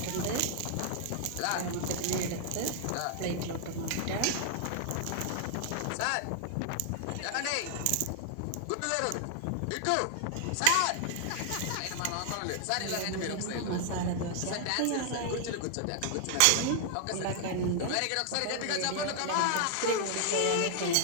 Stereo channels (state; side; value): different; both; correlation 0.00